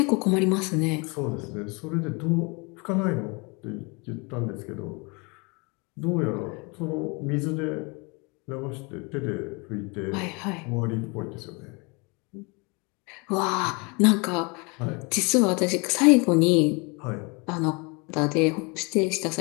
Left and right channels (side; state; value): right; quieter; 29.8 dB